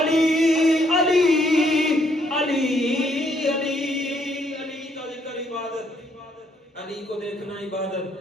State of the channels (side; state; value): both; normal; correlation 0.70